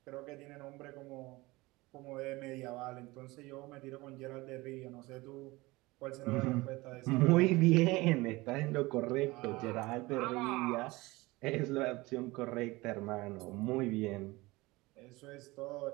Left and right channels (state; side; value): quieter; left; 21.5 dB